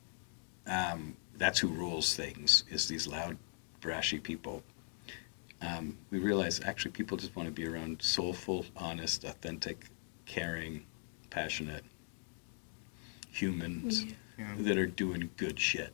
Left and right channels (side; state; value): right; silent; 51 dB below the other